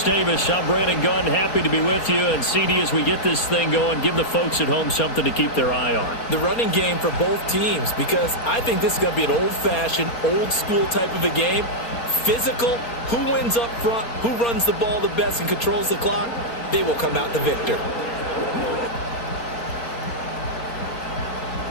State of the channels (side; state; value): right; late; 4.3 ms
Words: Davis, I'm Brandon Gunn. Happy to be with you. And CD, as we get this thing going, give the folks at home something to keep their eye on. The running game for both teams, because I think this is going to be an old-fashioned, old-school type of a game. Physical, who wins up front, who runs the ball the best and controls the clock, they will come out the victor.